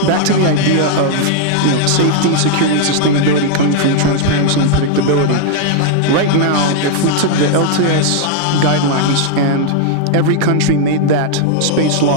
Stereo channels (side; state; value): both; different; correlation 0.00